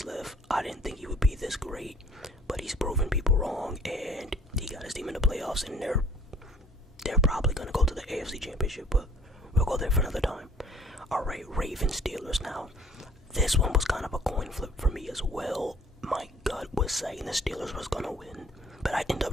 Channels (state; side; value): normal; both; correlation 0.54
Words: left, I didn't think he would be this great. But he's proven people wrong, and he got his team in the playoffs, and they're probably going to go to the AFC Championship, but we'll go there for another time. Alright, Ravens Steelers now. This one was kind of a coin flip for me as well. My gut was saying the Steelers was going to win, but I ended